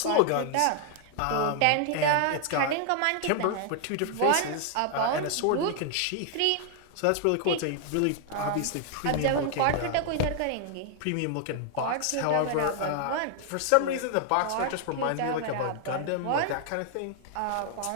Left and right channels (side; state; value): both; different; correlation 0.00